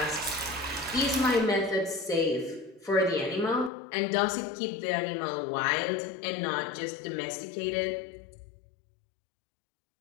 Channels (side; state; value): right; drops out; at 3.7 s